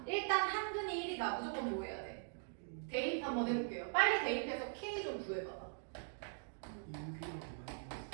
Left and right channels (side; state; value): left; silent; digital silence